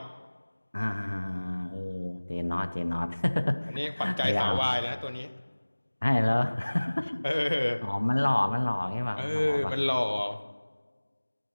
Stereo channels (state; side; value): inverted; both; correlation -1.00